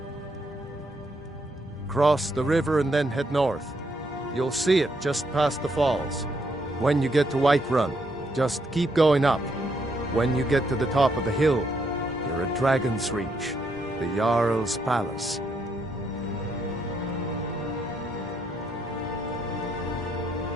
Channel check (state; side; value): normal; both; correlation 0.75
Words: Cross the river and then head north. You'll see it just past the falls. When you get to Whiterun, just keep going up. When you get to the top of the hill, you're at Dragon's Reach, the Jarl's Palace.